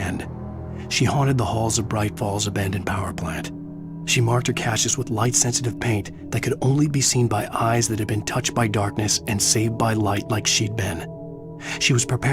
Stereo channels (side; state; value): both; identical; correlation 1.00